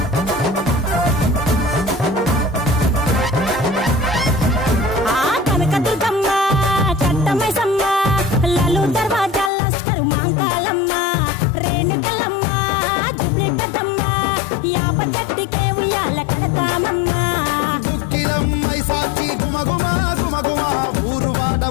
కనకదుర్గమ్మ కట్టమైసమ్మ లలు దర్వాజా లస్కరు మాంకాలమ్మ రేణుకలమ్మ జుబ్లి పెద్దమ్మ యాప చెట్టుకే ఉయ్యాల కడతామమ్మ దుక్కిలమ్మై సాచి గుమగుమ గుమగుమ ఊరు వాడ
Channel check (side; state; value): right; drops out; at 9.5 s